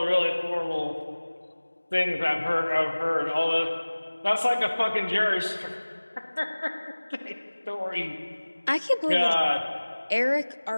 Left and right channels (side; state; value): both; inverted; correlation -1.00